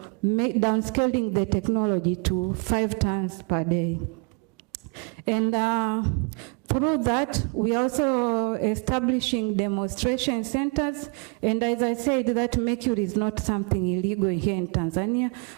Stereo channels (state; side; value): quieter; left; 34.8 dB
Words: downscaling the technology to 5 tons per day. And through that, we are also establishing demonstration centers. And as I said, that mercury is not something illegal here in Tanzania,